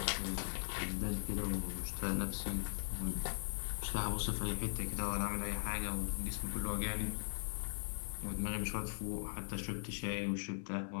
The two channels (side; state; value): right; silent; digital silence